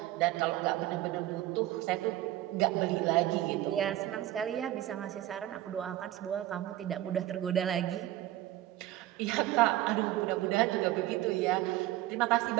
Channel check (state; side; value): quieter; left; 14.8 dB